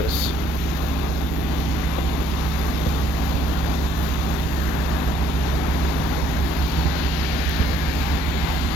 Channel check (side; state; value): both; normal; correlation 0.64